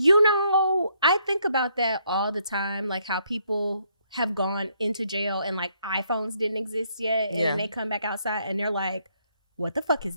know, I think about that all the time, like how people have gone into jail and like iPhones didn't exist yet, and then they come back outside and they're like, "What the fuck is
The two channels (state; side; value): inverted; both; correlation -0.72